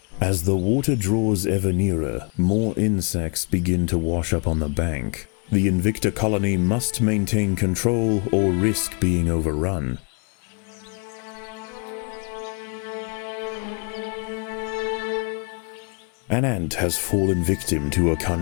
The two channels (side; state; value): right; quieter; 35.9 dB